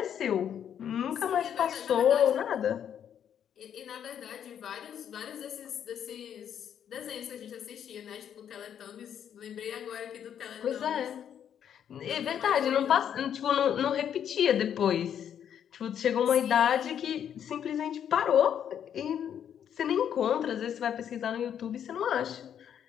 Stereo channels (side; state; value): right; quieter; 9.1 dB